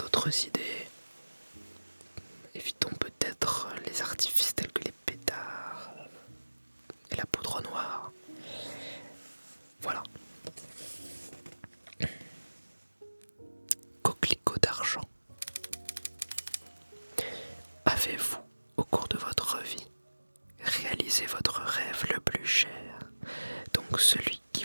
idées, évitons peut-être les artifices tels que les pétards et la poudre noire. Voilà. Coquelicot d'argent. Avez-vous, au cours de votre vie, réalisé votre rêve le plus cher, donc celui qui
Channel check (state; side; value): inverted; both; correlation -1.00